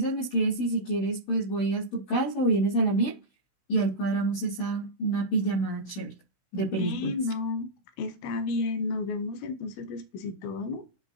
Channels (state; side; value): late; right; 16 ms